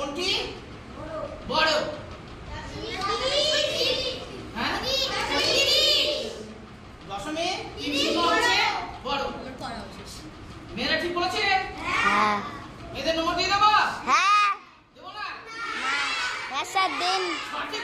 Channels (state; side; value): identical; both; correlation 1.00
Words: বড়? হ্যাঁ, 0.30 হচ্ছে বড়। মেয়েরা ঠিক বলেছে? হ্যাঁ। এদের নম্বর দিয়ে দেবো? হ্যাঁ। দেবো না? হ্যাঁ স্যার দিন। সঠিক